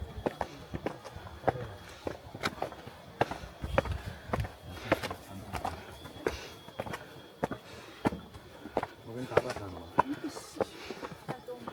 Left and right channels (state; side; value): identical; both; correlation 1.00